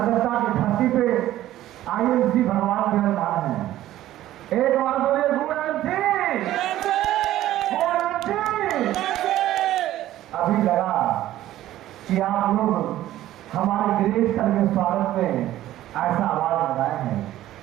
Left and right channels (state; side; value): quieter; left; 13.9 dB